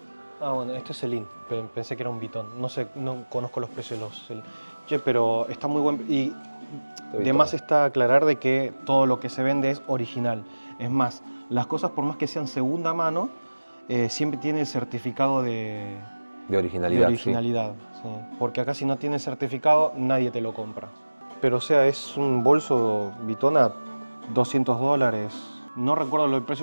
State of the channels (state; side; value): inverted; both; correlation -1.00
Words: bueno, este es Celine. Pensé que era un Vuitton. No sé, no conozco los precios de los Celine. Che, pero está muy buen... Y de más está aclarar de que todo lo que se vende es original. Es más, las cosas por más que sean segunda mano, siempre tiene el certificado de originalidad. Sí. Porque acá si no tiene certificado, nadie te lo compra. Pero o sea, es un bolso Vuitton a $200. No recuerdo el precio